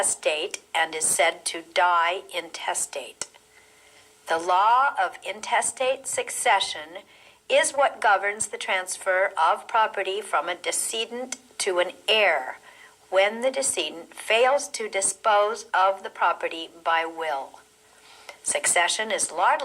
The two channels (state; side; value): identical; both; correlation 1.00